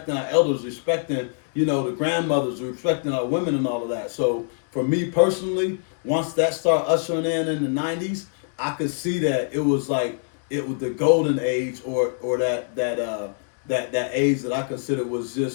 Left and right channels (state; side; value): silent; right; digital silence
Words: our elders, respecting, you know, the grandmothers, respecting our women and all of that. So for me personally, once that started ushering in the '90s, I could see that it was the golden age, or that age that I consider was